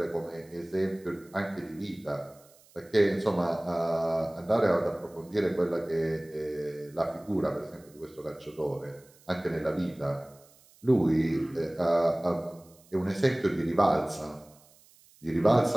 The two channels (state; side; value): noise; right; hiss, 28 dB below the sound